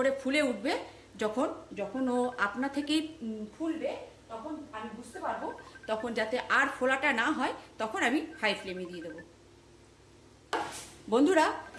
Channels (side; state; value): both; identical; correlation 1.00